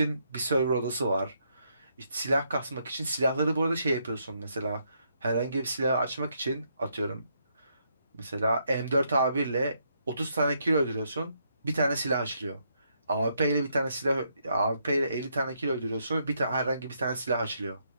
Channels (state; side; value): inverted; both; correlation -0.75